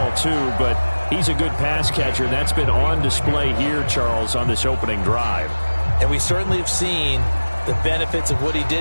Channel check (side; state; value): both; inverted; correlation -1.00